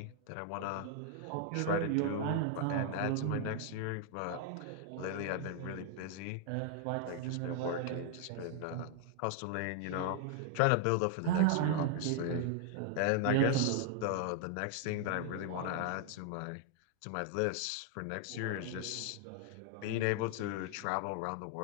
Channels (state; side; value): different; both; correlation 0.00